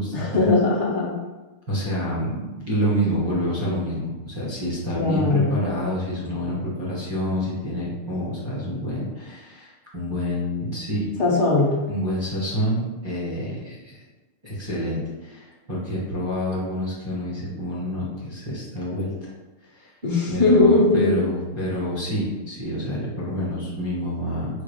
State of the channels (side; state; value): left; late; 6.6 ms